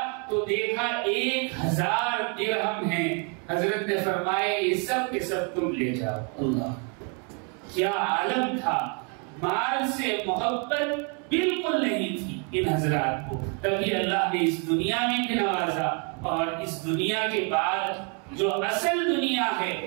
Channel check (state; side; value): quieter; left; 37.0 dB